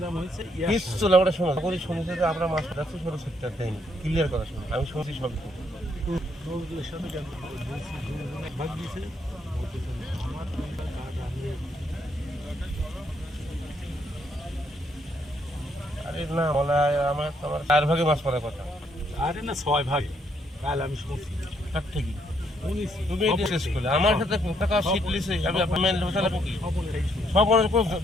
হয়েছে কিচ্ছু না। আমরা শোনো করি শুনেছি যে আমরা মাছ যাচ্ছি 16 টাকা দেয়নি, ক্লিয়ার কথা শুনি আমি শুনছি সব কিছু। নজরুলের সাথে ভাগ দিয়েছে আমার আরে না বলা আমার তোমার 4 ভাগে মাছ পড়ার কথা। আরে না 6 ভাগে কাল আমি শুনছি তার ঠিকই শুনেছি তুমি এটা শেষ করলে আমার সাথে টাকা সিট লিসে আমি আপনার বসালে কি সব অনেক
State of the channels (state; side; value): normal; both; correlation 0.72